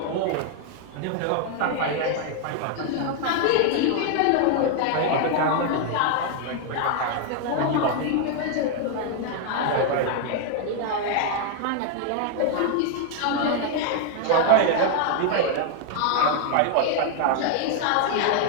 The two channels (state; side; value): different; both; correlation 0.00